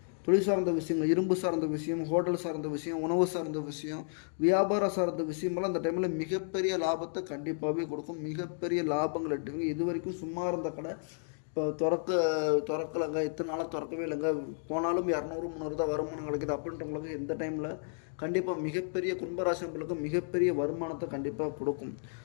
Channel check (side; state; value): right; silent; digital silence